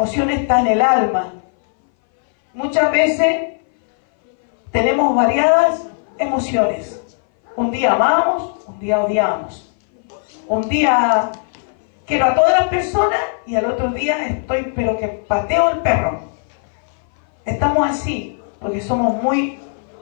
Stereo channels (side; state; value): right; silent; 61 dB below the other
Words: está en el alma. Muchas veces tenemos variadas emociones. Un día amamos, un día odiamos. Un día quiero a todas las personas y al otro día estoy, pero que pateo el perro. Estamos así, porque somos muy